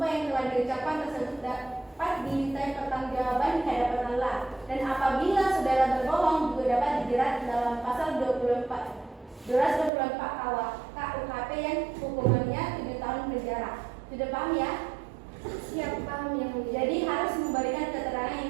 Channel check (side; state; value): left; drops out; at 9.9 s